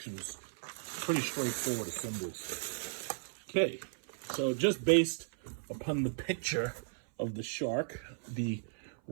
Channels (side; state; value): left; silent; 54 dB below the other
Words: Pretty straightforward assemblies. Okay, so just based upon the picture of the Shark, the